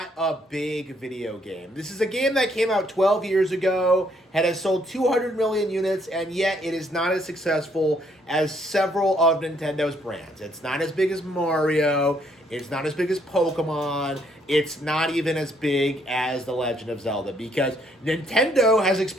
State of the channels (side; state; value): both; normal; correlation 0.69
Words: a big video game. This is a game that came out 12 years ago, has sold 200 million units, and yet it is not as successful as several of Nintendo's brands. It's not as big as Mario, it's not as big as Pokemon, it's not even as big as The Legend of Zelda, because Nintendo has